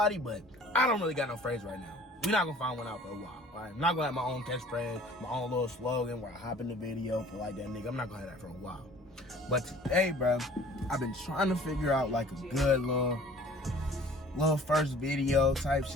but I don't really got no phrase right now. We're not gonna find one out for a while. Alright, I'm not gonna have my own catchphrase, my own little slogan where I hop in the video for like that nigga. I'm not gonna have that for a while. But today, bro, I've been trying to figure out like a good little first video type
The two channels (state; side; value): normal; both; correlation 0.50